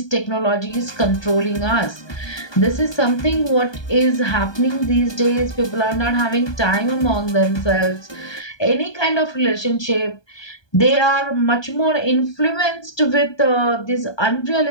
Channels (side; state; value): right; late; 1.2 ms